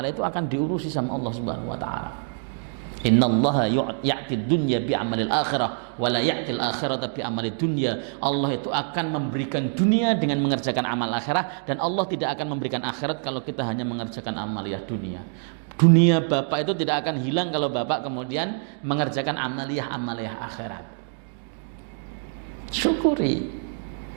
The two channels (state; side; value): silent; left; 61 dB below the other